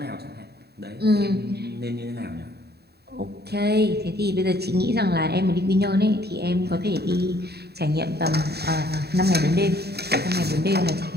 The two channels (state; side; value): late; left; 0.47 ms